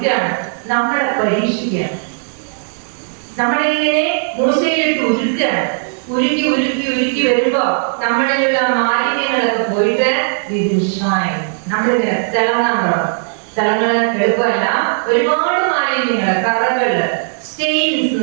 നമ്മളെ പരീക്ഷിക്കുകയാണ്. നമ്മളെ ഇങ്ങനെ മൂശയിലിട്ട് ഉരുക്കുകയാണ്. ഉരുക്കി ഉരുക്കി ഉരുക്കി വരുമ്പോ നമ്മളിലുള്ള മാലിന്യങ്ങളൊക്കെ പോയിട്ട് നമ്മളിങ്ങനെ തിളങ്ങാൻ തുടങ്ങും. തിളങ്ങള് എളുപ്പമല്ല, ഒരുപാട് മാലിന്യങ്ങള്, കറകള്, സ്റ്റെയിൻസ്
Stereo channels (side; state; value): left; silent; 61 dB below the other